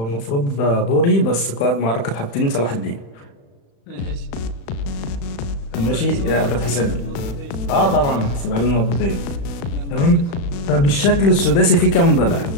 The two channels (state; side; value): late; right; 35 ms